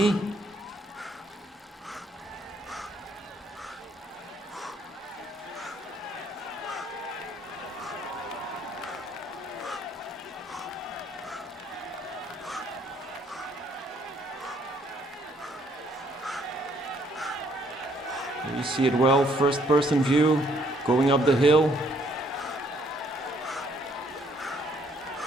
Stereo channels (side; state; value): both; normal; correlation 0.67